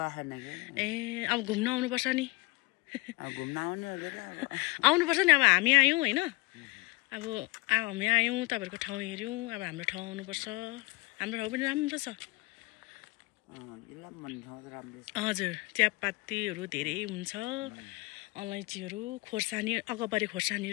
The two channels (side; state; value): right; quieter; 24.3 dB